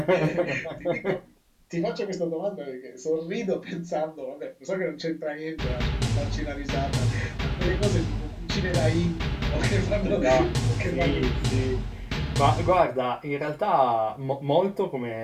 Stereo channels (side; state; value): both; identical; correlation 1.00